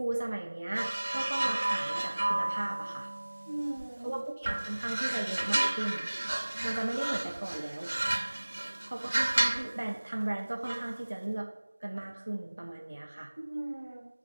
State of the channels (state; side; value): inverted; both; correlation -1.00